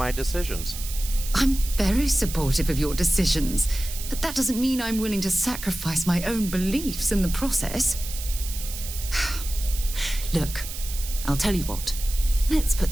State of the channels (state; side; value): noise; right; hiss, 9 dB below the sound